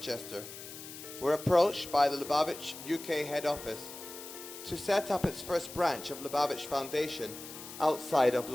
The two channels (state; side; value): noise; left; hiss, 12 dB below the sound